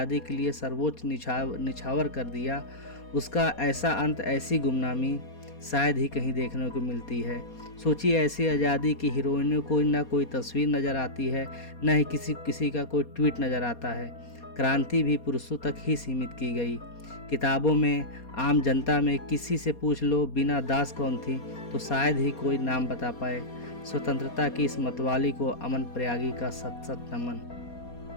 के लिए सर्वोच्च निछावर कर दिया, उसका ऐसा अंत, ऐसी गुमनामी शायद ही कहीं देखने को मिलती है। सोचिए, ऐसी आज़ादी की हीरोइनों को न कोई तस्वीर नज़र आती है, न ही किसी का कोई ट्वीट नज़र आता है। क्रांति भी पुरुषों तक ही सीमित की गई। किताबों में, आम जनता में किसी से पूछ लो बीना दास कौन थी, तो शायद ही कोई नाम बता पाए। स्वतंत्रता की इस मतवाली को अमन प्रयागी का सत सत नमन।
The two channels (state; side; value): late; right; 4.2 ms